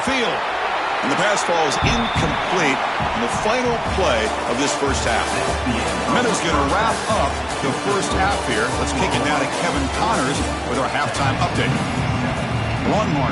And the pass falls incomplete in the final play of this first half. Meadows going to wrap up the first half here. Let's kick it now to Kevin Connors with our halftime update.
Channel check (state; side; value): identical; both; correlation 1.00